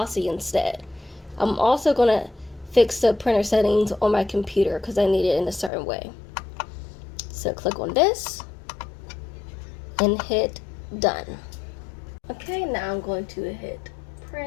instead. I'm also gonna fix the printer settings on my computer because I need it in a certain way. So click on this and hit done. Okay, now I'm going to hit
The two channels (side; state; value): right; drops out; at 5.7 s